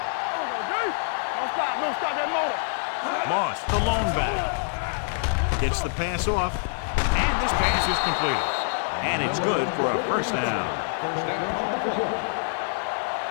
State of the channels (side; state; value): right; silent; digital silence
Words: There we go, D. Don't stop that motor. Moss, the lone back. Gets the pass off, and this pass is completed. And it's good for a first down. First down on the play.